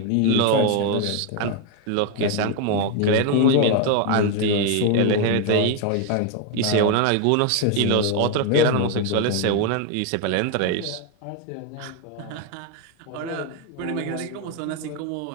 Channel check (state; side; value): different; both; correlation 0.01